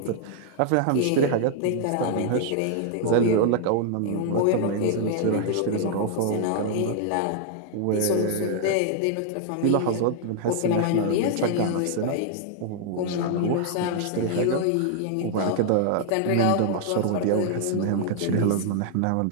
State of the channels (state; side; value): different; both; correlation -0.01